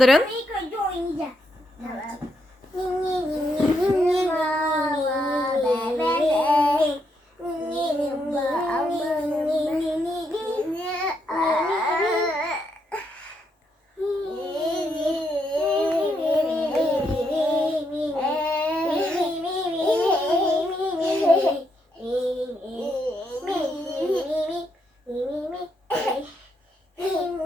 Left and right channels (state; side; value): normal; both; correlation 0.78